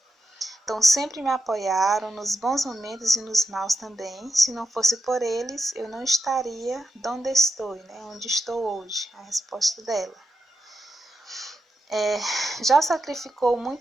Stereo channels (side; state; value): both; normal; correlation 0.86